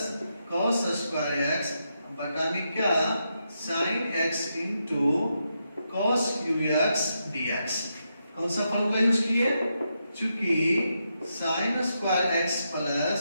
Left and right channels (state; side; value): inverted; both; correlation -0.83